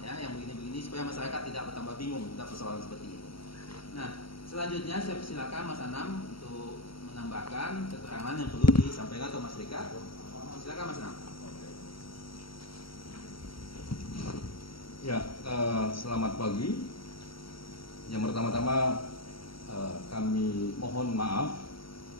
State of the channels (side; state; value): right; late; 0.75 ms